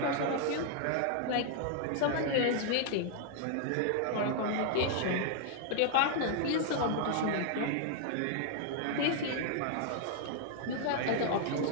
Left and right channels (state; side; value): different; both; correlation -0.01